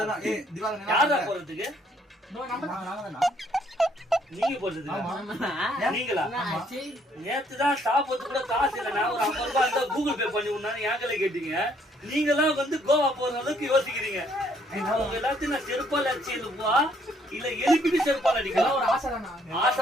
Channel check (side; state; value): both; normal; correlation 0.66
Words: யாரா போறதுக்கு? நீங்க போறது நீங்களா? நேத்துதான் சாப்பிட்டு கூட காசு இல்ல. நான் ஒரு 50 ரூபாய் இருந்தா கூகுள் பே பண்ணி விடணும் ஏங்கல கேட்டீங்க. நீங்க எல்லாம் வந்து கோவா போற அளவுக்கு யோசிக்கிறீங்க. உங்க எல்லாத்தையும் நான் செருப்பால் அடிச்சு எழுப்பா இல்ல எழுப்பிட்டு செருப்பால் அடிக்கலாம். ஆசை